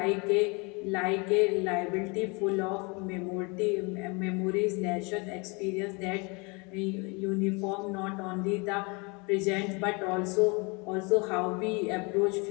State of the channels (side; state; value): right; quieter; 29.7 dB